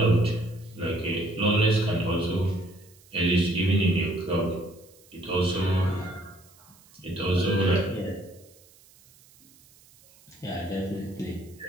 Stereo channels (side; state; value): right; noise; hiss, 27 dB below the sound